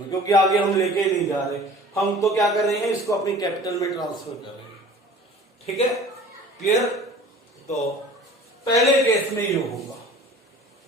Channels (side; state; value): both; normal; correlation 0.45